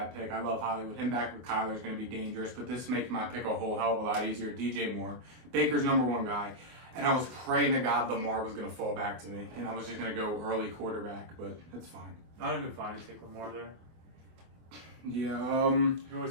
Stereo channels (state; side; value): late; left; 24 ms